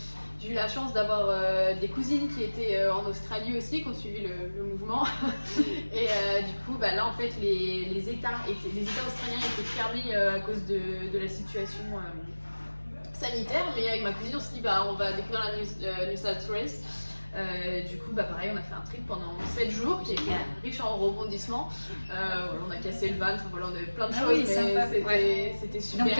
J'ai eu la chance d'avoir des cousines qui étaient en Australie aussi, qui ont suivi le mouvement. Et du coup, là en fait, les États australiens étaient fermés à cause de la situation sanitaire. Mais avec ma cousine, on s'est dit, on va découvrir la New South Wales. Du coup, pareil, on a fait un trip pendant 7 jours qui était riche en rebondissements. On a cassé le van, voilà, on avait plein de choses, mais c'était super. Donc,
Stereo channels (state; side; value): inverted; both; correlation -1.00